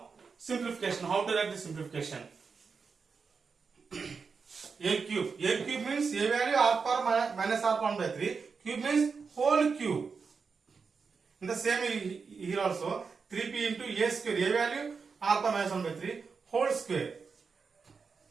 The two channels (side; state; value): left; quieter; 5.2 dB